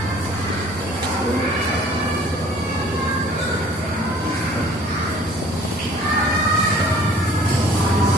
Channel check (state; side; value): normal; both; correlation 0.52